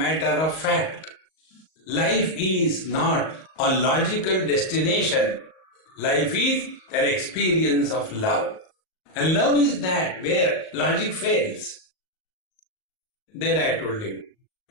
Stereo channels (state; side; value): late; right; 38 ms